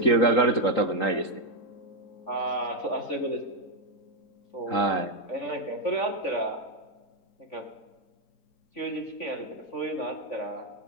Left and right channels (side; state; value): right; late; 3.8 ms